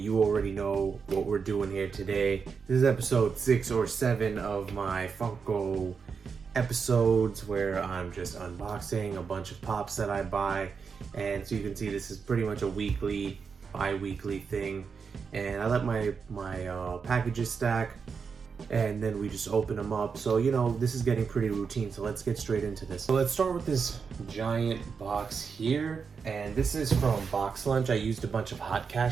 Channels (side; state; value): left; quieter; 5.7 dB